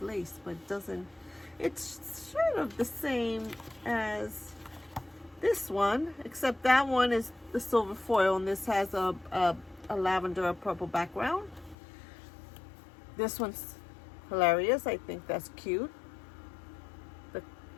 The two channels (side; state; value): right; drops out; at 11.8 s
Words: lace, but it doesn't. It's sort of the same as this one, except that one is the silver foil, and this has a lavender or purple background. This one's hilarious. I think that's cute. The